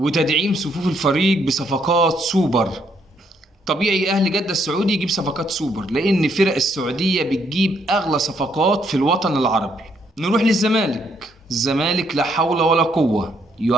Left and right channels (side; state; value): both; normal; correlation 0.72